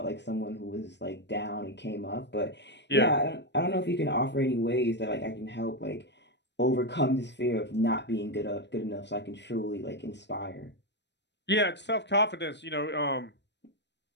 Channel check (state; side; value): late; right; 0.51 ms